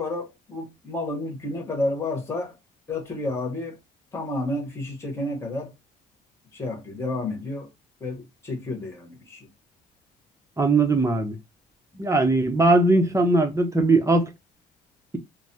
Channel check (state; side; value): normal; both; correlation 0.67